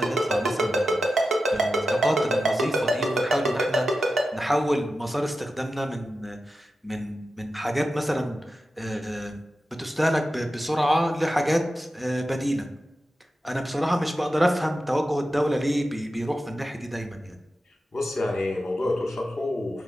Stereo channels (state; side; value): normal; both; correlation 0.92